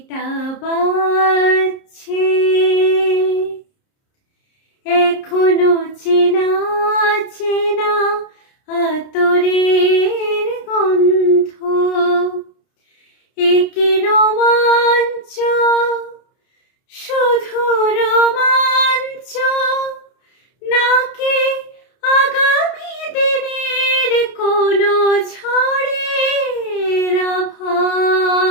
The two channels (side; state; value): right; late; 30 ms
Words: বাজছে, এখনো চেনা চেনা আতরের গন্ধ। একি রোমাঞ্চ, শুধু রোমাঞ্চ, নাকি আগামী দিনের কোনো ঝড়ের